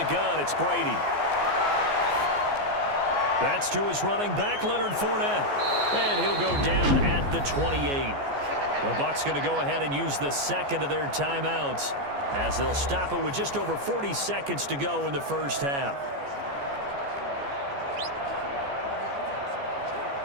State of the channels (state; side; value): late; left; 14 ms